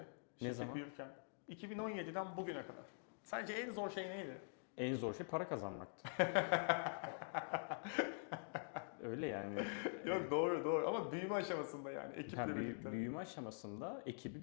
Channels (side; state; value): right; silent; digital silence